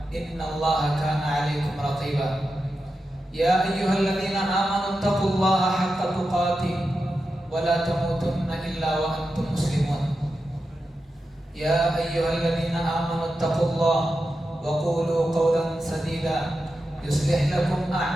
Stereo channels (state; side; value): normal; both; correlation 0.90